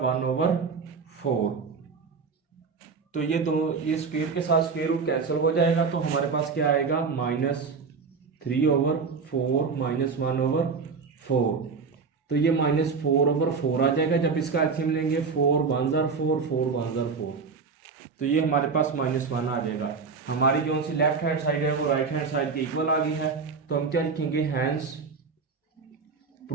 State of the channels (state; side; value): quieter; left; 5.1 dB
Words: 1/4, तो ये स्क्वायर के साथ स्क्वायर रूट कैंसिल हो जाएगा, तो हमारे पास क्या आएगा -3/4 माइनस 1/4, तो ये -4/4 आ जाएगा। जब इसका एलसीएम लेंगे 4 1 जार 4 4 1 जार 4, तो ये हमारे पास -1 आ जाएगा। हमारी जो सी लेफ्ट हैंड साइड है वो राइट हैंड साइड के इक्वल आ गई है, तो हम क्या लिखेंगे hence